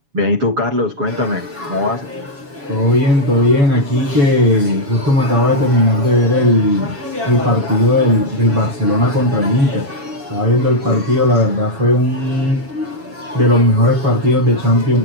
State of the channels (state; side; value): late; left; 7.1 ms